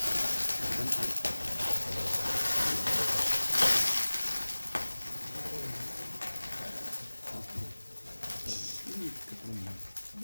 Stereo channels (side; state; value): both; inverted; correlation -1.00